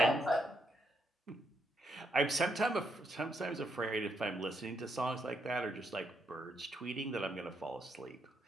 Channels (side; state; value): both; normal; correlation 0.77